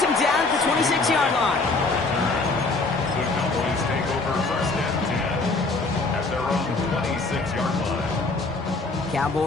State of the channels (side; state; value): right; quieter; 3.5 dB